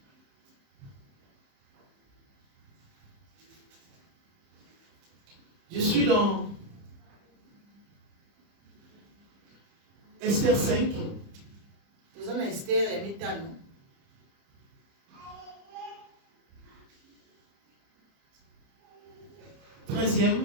Je suis dans Esther 5.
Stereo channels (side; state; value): left; late; 30 ms